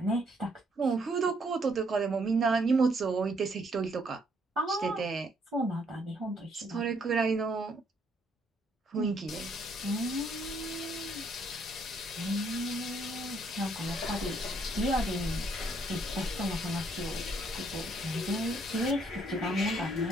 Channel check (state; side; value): normal; both; correlation 0.69